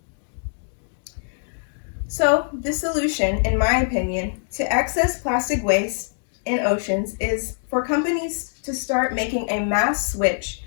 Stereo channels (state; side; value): silent; right; digital silence